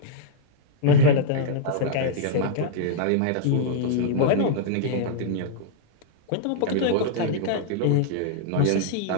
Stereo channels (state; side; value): different; both; correlation -0.02